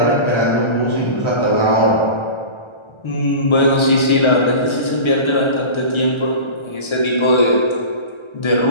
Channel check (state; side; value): late; right; 1.3 ms